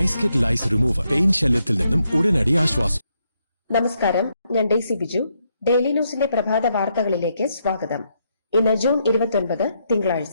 കിറ്റ് ലൈസ് റിമൂവർ പെയിൻ ശല്യത്തിൽ നിന്നും ഉടനടി ആശ്വാസം. നമസ്കാരം, ഞാൻ ഡെയ്സി ബിജു. ഡെയിലി ന്യൂസിന്റെ പ്രഭാത വാർത്തകളിലേക്ക് സ്വാഗതം. ഇന്ന് ജൂൺ 29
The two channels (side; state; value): both; inverted; correlation -0.78